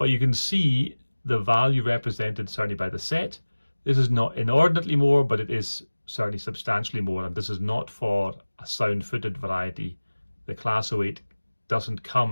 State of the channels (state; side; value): inverted; both; correlation -1.00